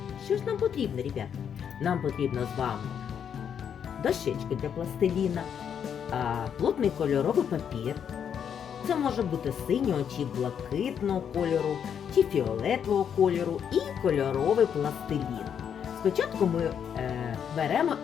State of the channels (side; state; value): right; quieter; 8.1 dB